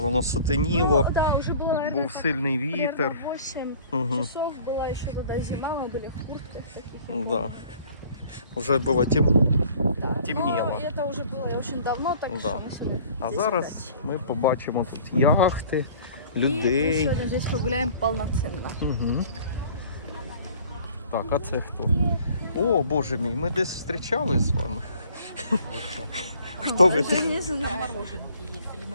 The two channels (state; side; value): inverted; both; correlation -0.51